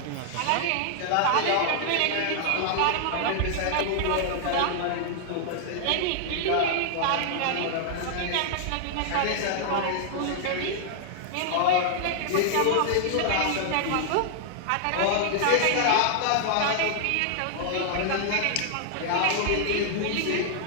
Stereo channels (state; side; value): different; both; correlation -0.01